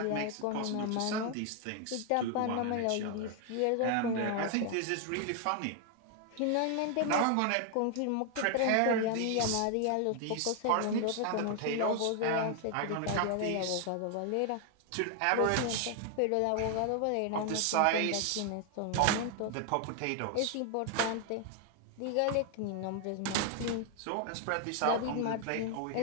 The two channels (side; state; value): both; different; correlation 0.00